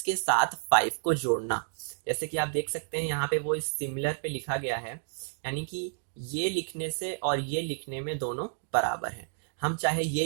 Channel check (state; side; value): silent; left; digital silence